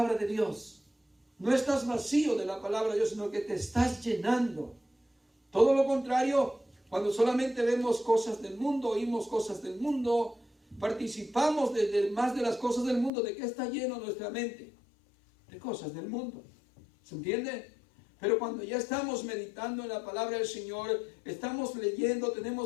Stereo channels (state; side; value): drops out; right; at 13.1 s